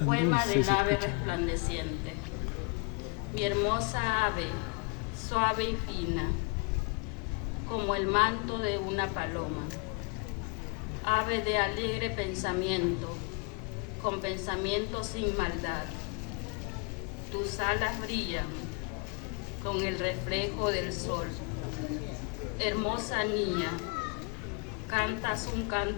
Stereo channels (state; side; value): quieter; right; 31.9 dB